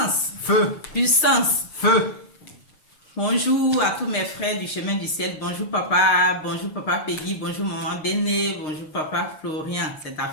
Feu. Puissance. Feu. Bonjour à tous mes frères du chemin du ciel. Bonjour papa Peggy. Bonjour maman Béné. Bonjour papa Florian. C'est ta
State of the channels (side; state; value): right; late; 6.6 ms